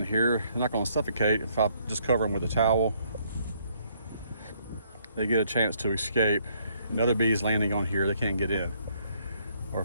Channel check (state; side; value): inverted; both; correlation -0.69